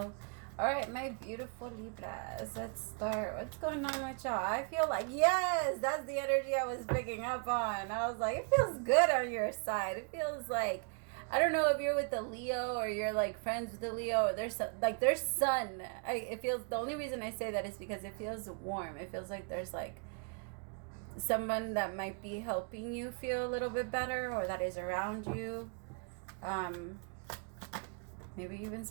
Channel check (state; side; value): quieter; left; 38.1 dB